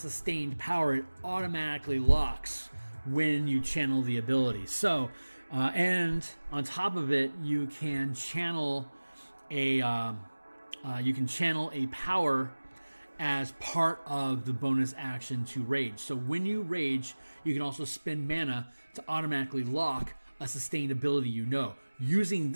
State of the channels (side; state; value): both; inverted; correlation -1.00